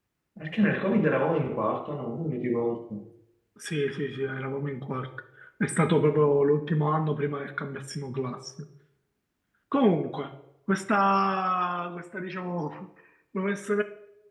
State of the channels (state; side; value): identical; both; correlation 1.00